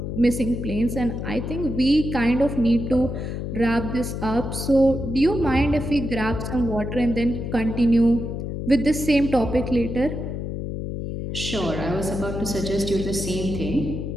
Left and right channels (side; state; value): left; noise; hum, 5 dB below the sound